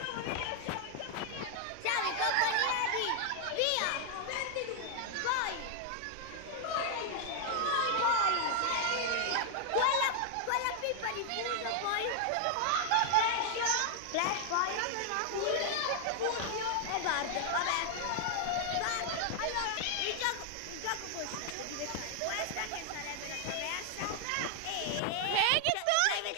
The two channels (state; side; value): different; both; correlation 0.00